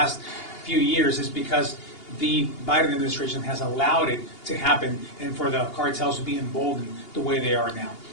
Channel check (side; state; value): right; late; 2.8 ms